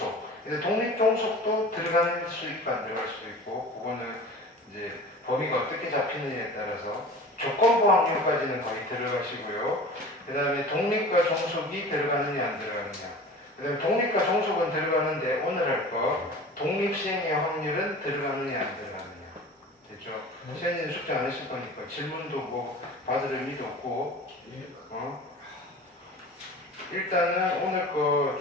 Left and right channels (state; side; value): normal; both; correlation 0.38